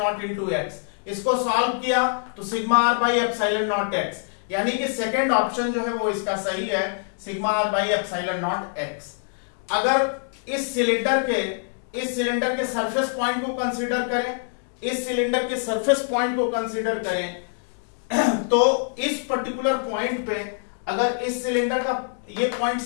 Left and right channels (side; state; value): right; silent; digital silence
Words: into x. इसको सॉल्व किया तो sigma r by epsilon not x, यानी कि सेकेंड ऑप्शन जो है वो इसका सही है, sigma r by epsilon not x. अगर इस सिलेंडर के सरफेस पॉइंट को कंसीडर करें, इस सिलेंडर के सरफेस पॉइंट को कंसीडर करें तो इस पर्टिकुलर पॉइंट पे अगर इस सिलेंडर का ये पॉइंट